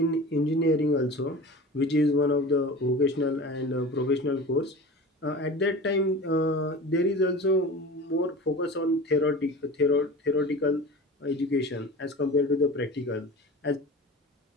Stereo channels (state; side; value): normal; both; correlation 0.35